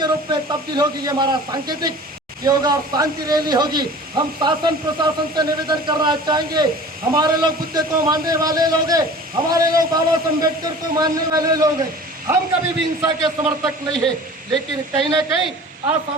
रूप में तब्दील होगी, ये हमारा सांकेतिक होगा और शांति रैली होगी। हम शासन प्रशासन से निवेदन करना चाहेंगे, हमारे लोग बुद्ध को मानने वाले लोग हैं, हमारे लोग बाबा साहब अम्बेडकर को मानने वाले लोग हैं, हम कभी भी हिंसा के समर्थक नहीं है, लेकिन कहीं ना कहीं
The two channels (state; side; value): normal; both; correlation 0.42